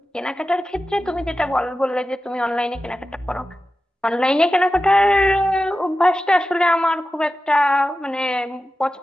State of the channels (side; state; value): both; normal; correlation 0.93